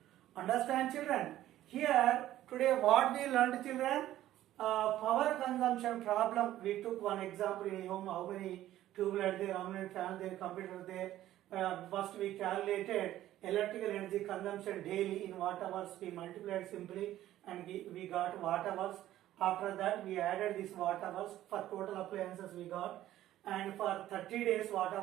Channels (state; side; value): quieter; left; 13.6 dB